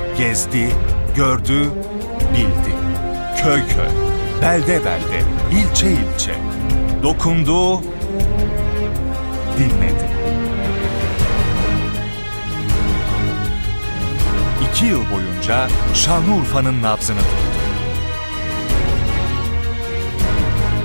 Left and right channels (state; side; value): inverted; both; correlation -1.00